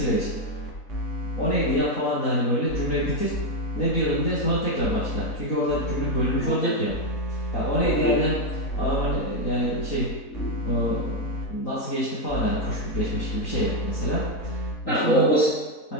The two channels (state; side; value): late; right; 4.0 ms